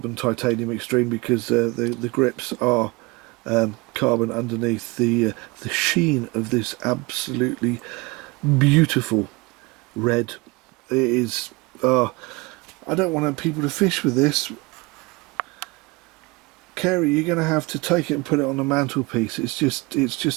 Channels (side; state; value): left; quieter; 24.9 dB